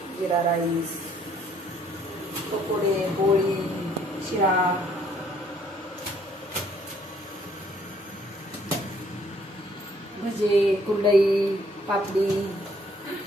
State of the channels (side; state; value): both; normal; correlation 0.64